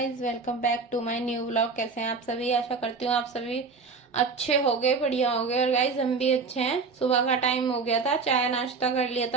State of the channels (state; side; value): quieter; left; 4.6 dB